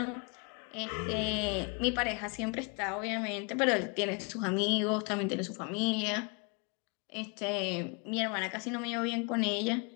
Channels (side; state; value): right; quieter; 33.3 dB